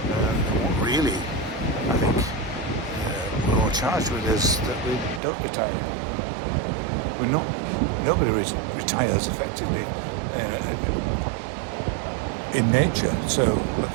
And what really, I think, we're all charged with is that we don't retire. Nobody retires effectively in nature. So look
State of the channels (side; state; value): left; drops out; at 5.2 s